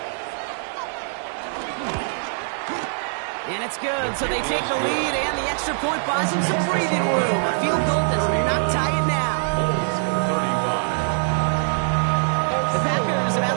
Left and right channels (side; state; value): left; silent; digital silence